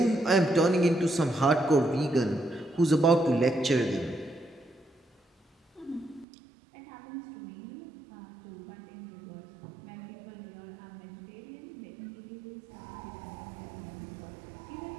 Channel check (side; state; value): left; drops out; at 6.2 s